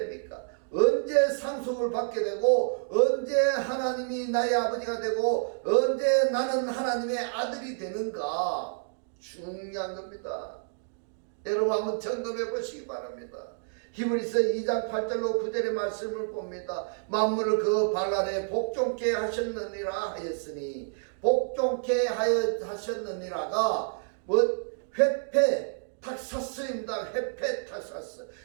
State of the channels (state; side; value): silent; left; digital silence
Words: 언제 상속을 받게 되고 언제 하나님이 나의 아버지가 되고 언제 나는 하나님의 아들이 되는가 중요한 겁니다. 여러분 한번 점검해 보시기 바랍니다. 히브리서 2장 8절로 9절의 말씀을 봅니다. 만물을 그 발 아래 복종케 하셨느니라 하였으니 복종케 하셨느니라가 회패 탁사스입니다. 회패 탁사스.